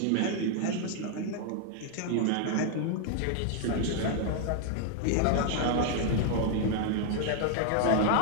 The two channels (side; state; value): both; different; correlation 0.00